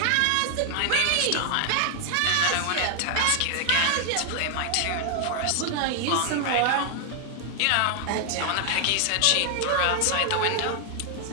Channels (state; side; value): different; both; correlation 0.00